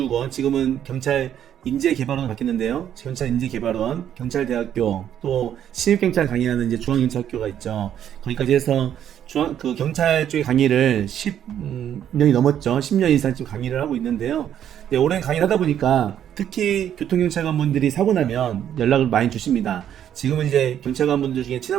지금은 경찰 인재개발원으로 바뀌었는데요. 경찰 인재개발원, 경찰대학교, 또 신입경찰 강의하는 이제 중앙경찰학교가 있죠. 거기까지 해서 경찰 쪽의 강의를 10년이 넘었죠. 10년 이상 지금 강의를 하고 있는데요. 네, 오랜 강의를 하다 보니까 특히 교통경찰관분들이 사고 나면 연락을 많이 주십니다. 지금은 이제 경찰관분들 중에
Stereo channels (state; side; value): quieter; left; 10.0 dB